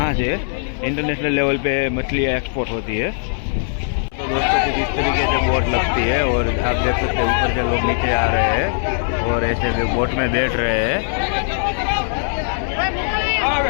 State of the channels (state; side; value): silent; right; digital silence